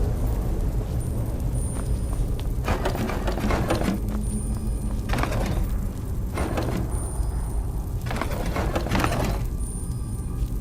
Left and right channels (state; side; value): identical; both; correlation 1.00